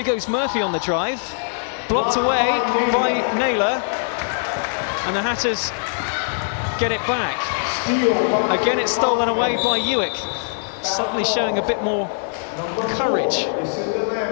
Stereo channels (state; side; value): silent; right; digital silence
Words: goes Murphy on the drive. Blocked away by Naylor. And the Hatters get it back. Again, it's stolen away by UWIC. Suddenly showing a bit more courage.